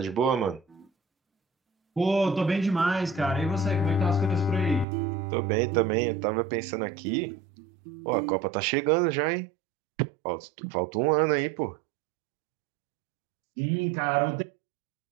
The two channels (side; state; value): left; drops out; at 4.9 s